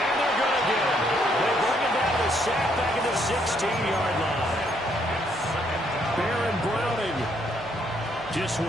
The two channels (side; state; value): both; normal; correlation 0.71